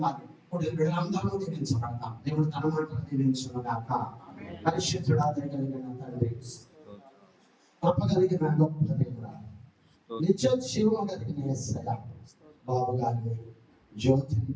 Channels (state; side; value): identical; both; correlation 1.00